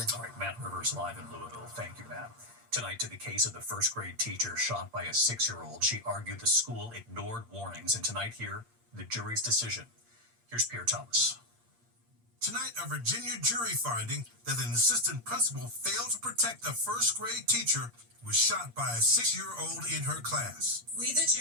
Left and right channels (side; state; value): left; late; 8.6 ms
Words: All right, Matt Rivers live in Louisville. Thank you, Matt. Tonight to the case of the first grade teacher shot by a 6-year-old. She argued the school ignored warnings, and tonight here, the jury's decision. Here's Pierre Thomas. Tonight, a Virginia jury finding that an assistant principal failed to protect a first grade teacher who was shot by a 6-year-old in her class. We, the